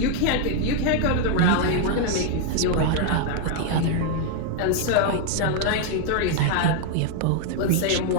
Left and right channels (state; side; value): different; both; correlation 0.00